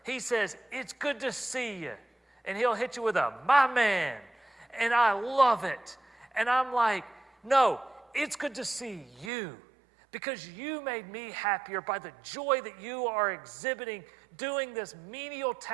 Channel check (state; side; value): drops out; left; at 9.3 s